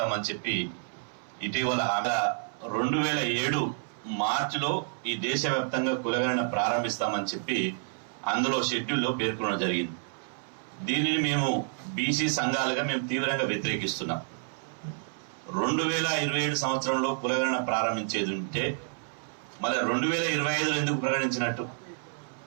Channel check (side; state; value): left; silent; 58 dB below the other